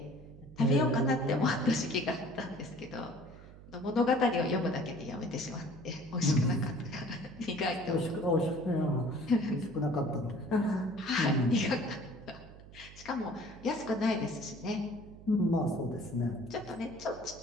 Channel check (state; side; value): noise; right; hum, 18 dB below the sound